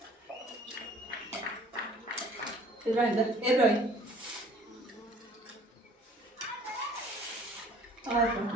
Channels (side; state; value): both; normal; correlation 0.54